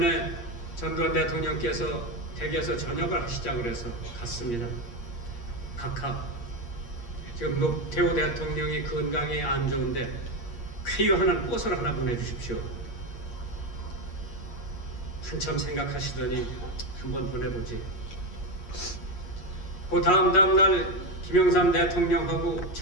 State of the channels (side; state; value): right; late; 8.5 ms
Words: 전두환 대통령께서 댁에서 저녁을 하시자고 그래서 갔습니다. 각하, 지금 노태우 대통령이 건강에 안 좋은데 쾌유하는 꽃을 하나 보내주십시오. 한참 생각하시더니 한번 보내보지. 그 다음 날 김영삼 대통령하고